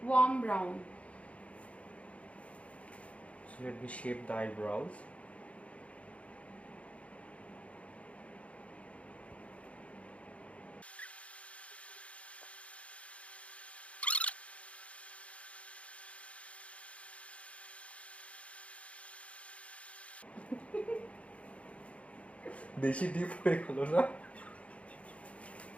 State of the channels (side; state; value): right; late; 0.064 ms